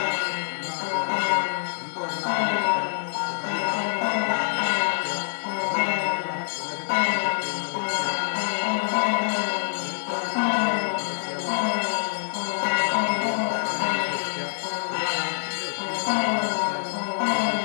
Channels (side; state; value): right; silent; digital silence